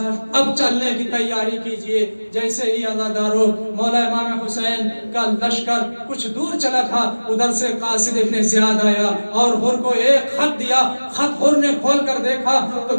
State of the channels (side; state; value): both; inverted; correlation -1.00